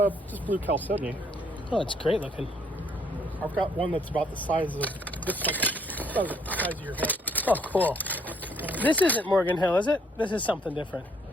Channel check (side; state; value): both; normal; correlation 0.67